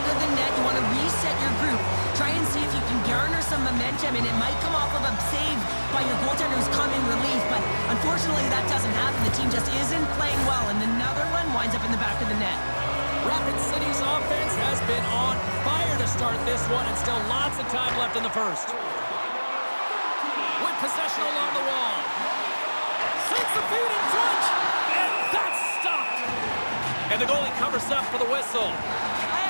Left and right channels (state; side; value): inverted; both; correlation -1.00